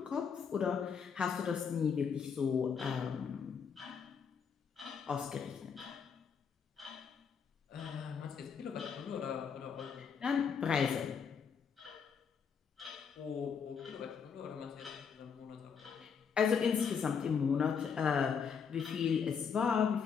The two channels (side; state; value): right; quieter; 6.6 dB